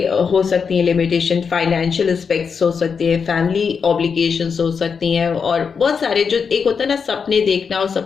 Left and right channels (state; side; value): quieter; right; 6.0 dB